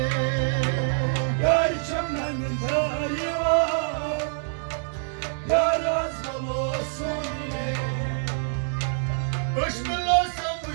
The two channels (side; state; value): left; silent; digital silence